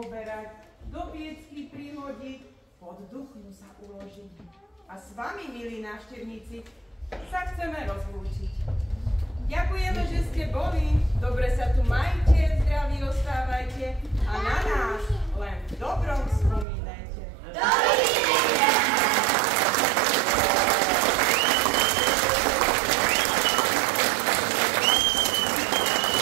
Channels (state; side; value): drops out; left; at 16.7 s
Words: do piecky prihodiť, pod duchnu sa uložiť. A s vami, milí návštevníci, sa chceme rozlúčiť. Ďakujeme, že ste boli, dobre sa tu majte, zdraví ostávajte a na nás len v dobrom spomínajte.